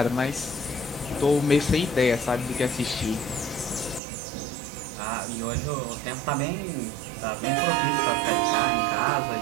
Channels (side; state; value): left; drops out; at 4.0 s